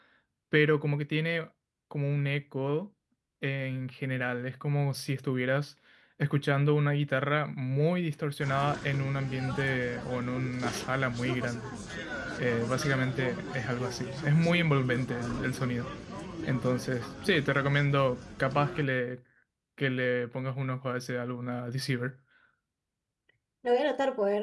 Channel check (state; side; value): identical; both; correlation 1.00